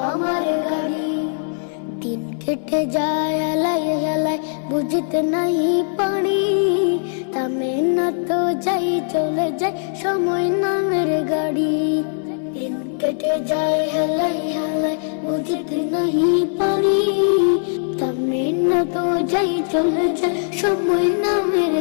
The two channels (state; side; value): silent; right; 65 dB below the other